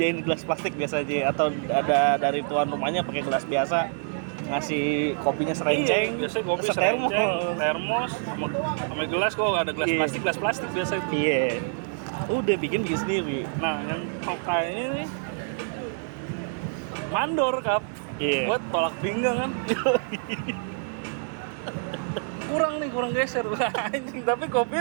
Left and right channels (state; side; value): silent; left; digital silence